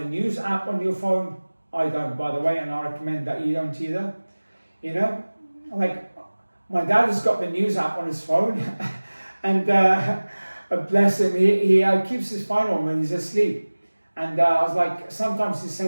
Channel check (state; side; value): inverted; both; correlation -1.00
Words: news app on your phone. I don't, by the way, and I recommend that you don't either. Like my dad has got the news app on his phone, and bless him, he keeps his phone on when he's asleep. And I was like, sometimes he